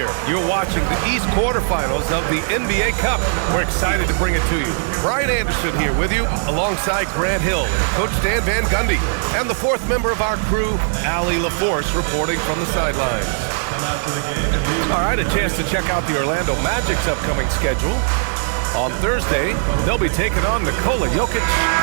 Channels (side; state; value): left; silent; 56 dB below the other